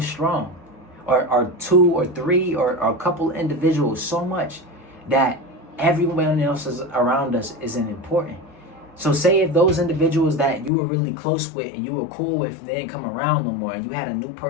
strong, or two or three or a couple individuals so much that everyone else around us isn't important. So say if those individuals that you were really close with and you were cool with, they didn't come around no more, and you had a new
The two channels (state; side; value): drops out; right; at 10.7 s